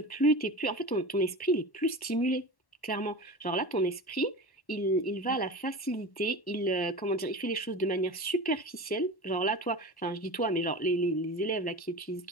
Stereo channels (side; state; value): right; late; 1.1 ms